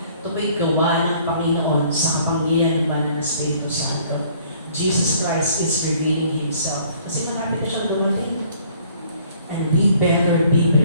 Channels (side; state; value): both; inverted; correlation -0.58